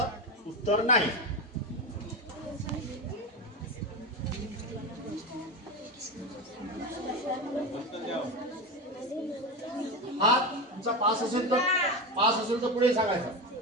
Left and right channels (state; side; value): normal; both; correlation 0.18